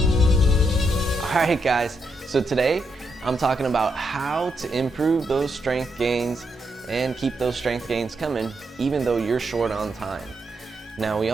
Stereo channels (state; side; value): normal; both; correlation 0.81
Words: Alright guys, so today I'm talking about how to improve those strength gains and keep those strength gains coming even though you're short on time. Now we